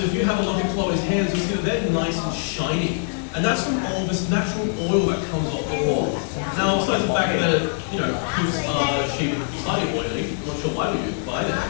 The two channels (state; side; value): silent; right; digital silence